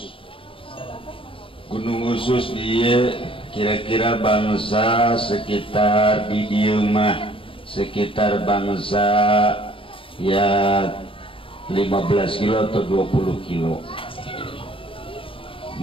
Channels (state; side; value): late; right; 0.26 ms